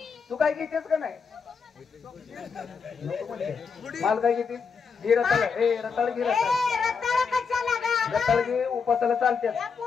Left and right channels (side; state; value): right; quieter; 5.7 dB